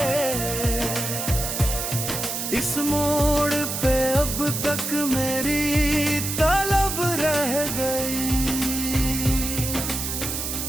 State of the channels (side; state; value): right; noise; hiss, 3 dB below the sound